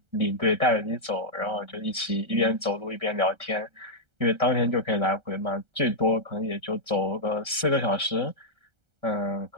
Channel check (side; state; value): left; late; 1.3 ms